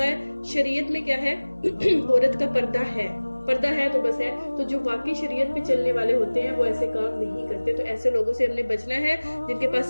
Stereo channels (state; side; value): inverted; both; correlation -1.00